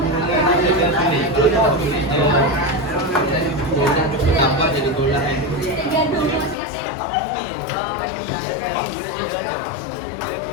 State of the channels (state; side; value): drops out; right; at 6.6 s